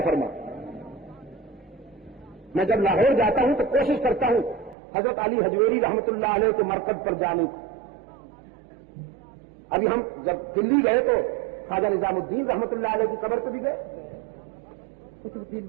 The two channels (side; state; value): left; drops out; at 4.8 s